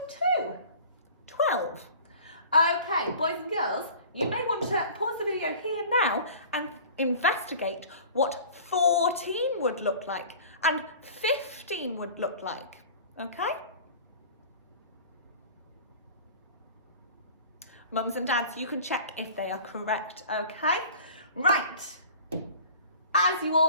2. 12. Okay, boys and girls, you may want to pause the video here now and investigate what 14 would look like and 15 would look like, okay? Mums and dads, you can check if they are correct, okay? Right, as you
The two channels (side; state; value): both; inverted; correlation -0.43